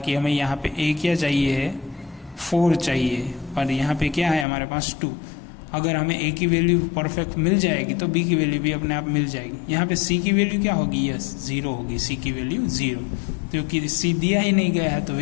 हमें यहाँ पे a क्या चाहिए है, 4 चाहिए, पर यहाँ पे क्या है हमारे पास 2। अगर हमें ए की वैल्यू परफेक्ट मिल जाएगी तो बी की वैल्यू भी अपने आप मिल जाएगी। यहाँ पे सी की वैल्यू क्या होगी, यस 0 होगी, सी की वैल्यू 0, क्योंकि सी दिया ही नहीं गया है तो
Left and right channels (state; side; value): drops out; right; at 4.5 s